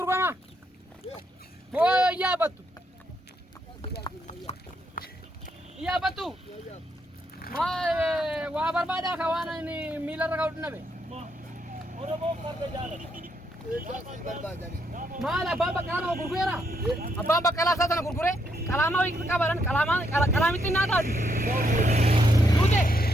Moo yaabattu? Yaabattu? Waa barbaadaa ka waan inni miilarra ka'u dhinnabe. Maal abbaan Baqqalaa gurgureera? Abbaan Baqqalaa isaa sana gurguree qalaamaa wayii qabaadhaan qalaamitti naa taatu. Duute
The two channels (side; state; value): both; normal; correlation 0.76